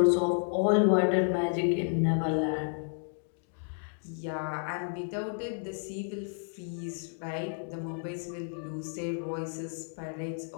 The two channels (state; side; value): silent; right; digital silence